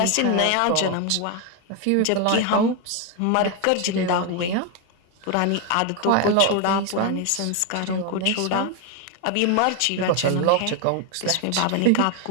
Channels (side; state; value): both; different; correlation 0.01